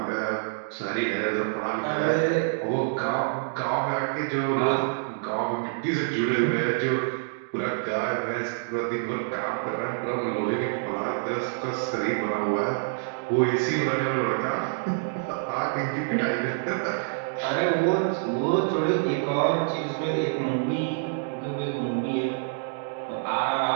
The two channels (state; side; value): silent; left; digital silence